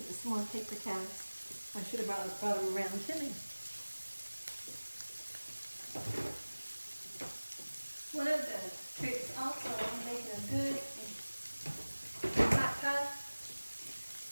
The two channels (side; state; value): both; inverted; correlation -1.00